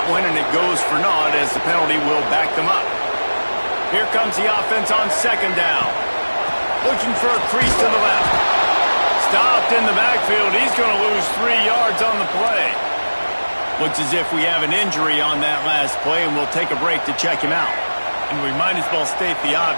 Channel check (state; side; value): inverted; both; correlation -1.00